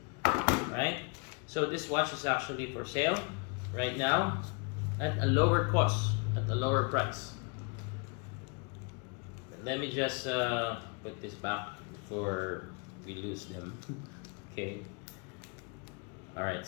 Alright, so this watch is actually for sale right now at a lower cost, at a lower price. But let me just put this back before we lose them. Okay. Alright,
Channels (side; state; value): right; quieter; 32.5 dB